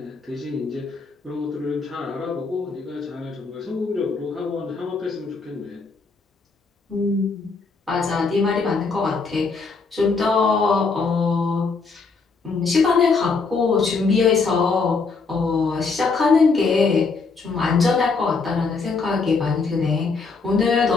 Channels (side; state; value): right; quieter; 4.5 dB